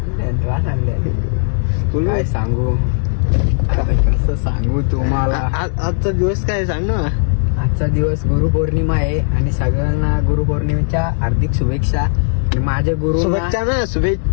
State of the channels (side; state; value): right; silent; 68 dB below the other